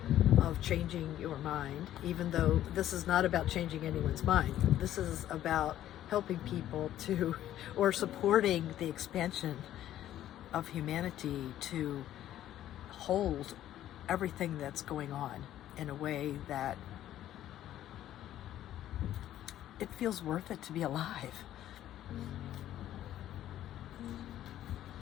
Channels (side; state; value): right; quieter; 12.4 dB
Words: of changing your mind, even though this is not about changing anyone's mind. This is about helping people to, or supporting the expansion of humanity to hold everything that's going on in a way that it feels worth it to be alive.